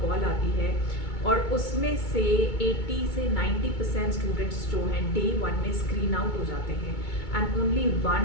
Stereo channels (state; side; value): late; right; 2.2 ms